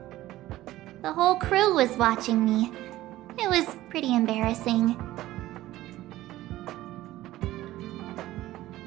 The whole crew was watching me. It was pretty embarrassing.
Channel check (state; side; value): quieter; left; 15.7 dB